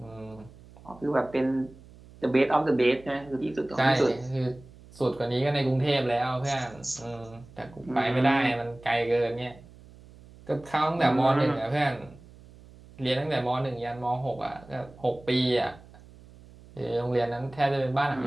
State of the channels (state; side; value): noise; right; hum, 22 dB below the sound